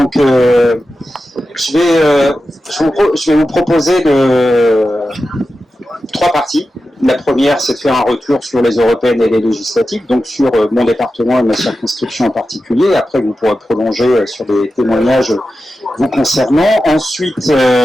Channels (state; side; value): normal; both; correlation 0.92